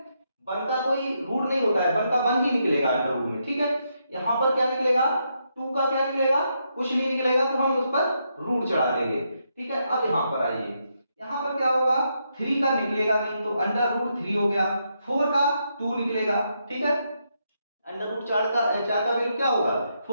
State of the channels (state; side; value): inverted; both; correlation -0.80